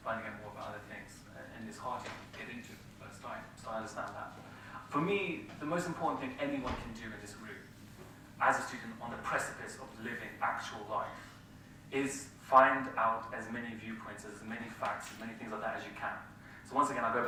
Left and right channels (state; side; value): identical; both; correlation 1.00